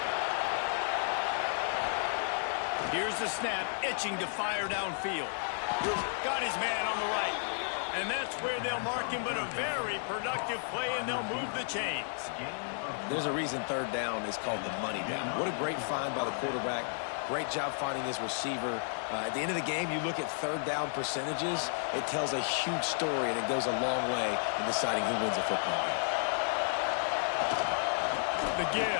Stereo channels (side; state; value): right; silent; digital silence